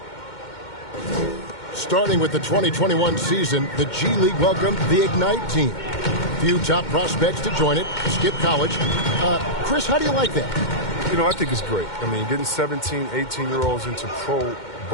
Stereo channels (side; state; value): right; late; 2.2 ms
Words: Starting with the 2021 season, the G League welcomed the Ignite team. Few top prospects to join it. Skip college. Chris, how do you like that? You know, I think it's great. I mean, getting 17, 18-year-olds into pro